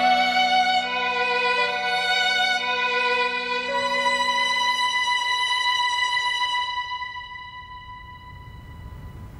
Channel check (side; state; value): both; identical; correlation 1.00